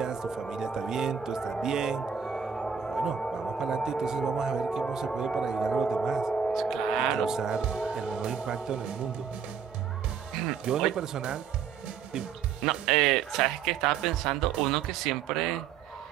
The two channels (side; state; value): left; quieter; 7.0 dB